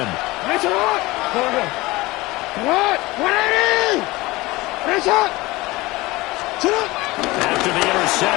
That's it. What? 180. That's it. After the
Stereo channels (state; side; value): quieter; right; 20.9 dB